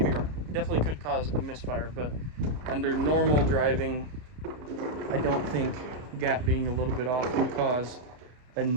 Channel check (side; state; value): left; late; 32 ms